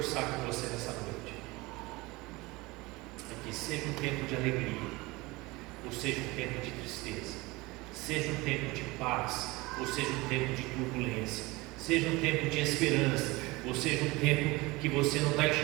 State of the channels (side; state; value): left; quieter; 22.5 dB